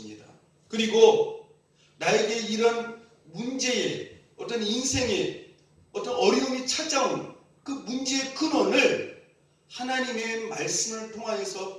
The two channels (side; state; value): both; identical; correlation 1.00